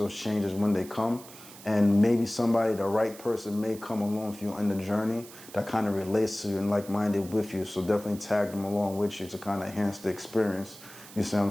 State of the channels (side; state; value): right; noise; hiss, 18 dB below the sound